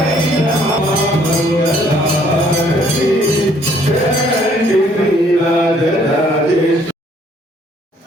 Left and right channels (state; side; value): normal; both; correlation 0.63